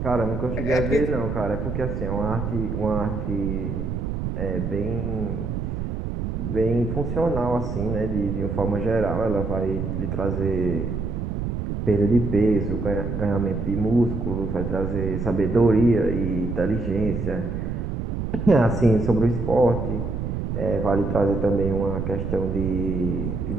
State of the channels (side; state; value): right; noise; rumble, 3 dB below the sound